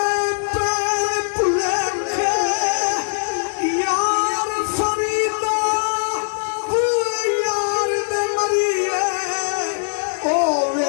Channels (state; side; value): silent; right; digital silence